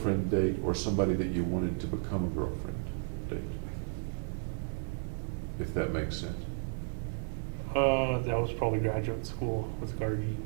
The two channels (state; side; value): silent; left; digital silence